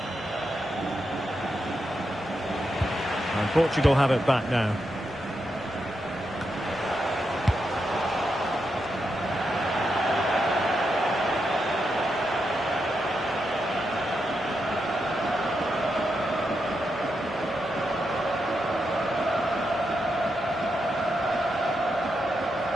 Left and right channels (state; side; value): normal; both; correlation 0.84